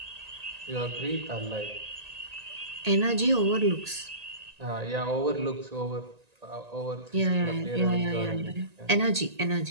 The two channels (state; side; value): late; left; 1.9 ms